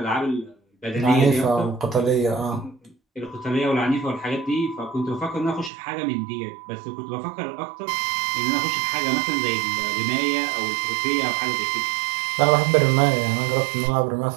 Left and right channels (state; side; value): drops out; left; at 5.7 s